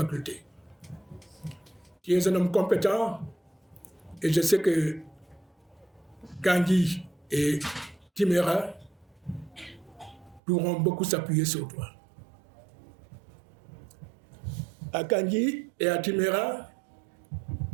Tu es un homme compétent et je sais que Kandji et Timéra pourront beaucoup s'appuyer sur toi. À Kandji et à Timéra,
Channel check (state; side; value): drops out; left; at 10.4 s